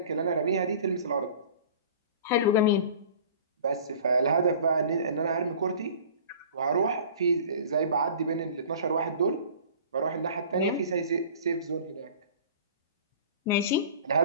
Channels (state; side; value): inverted; both; correlation -0.44